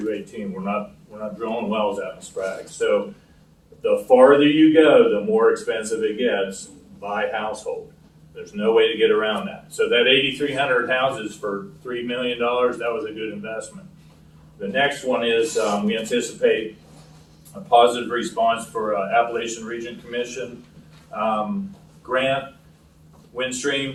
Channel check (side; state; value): both; identical; correlation 1.00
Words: We're not drilling wells out in Sprague. So the farther you go, the more expensive it gets by household. There's no way to get around that. So that 8,300 houses for $3 million, that was a good investment. The next one is we anticipate a positive response for Appalachian Region Commission grant.